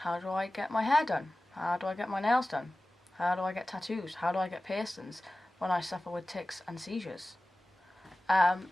do I get my hair done? How do I get my nails done? How do I get tattoos? How do I get piercings when I suffer with tics and seizures? And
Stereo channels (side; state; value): both; normal; correlation 0.97